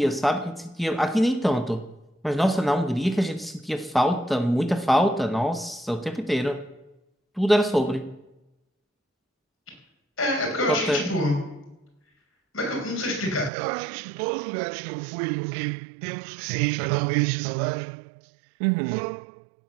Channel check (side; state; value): left; drops out; at 13.5 s